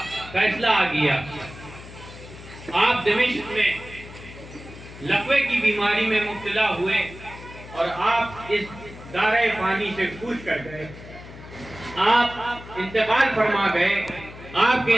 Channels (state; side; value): noise; left; hum, 16 dB below the sound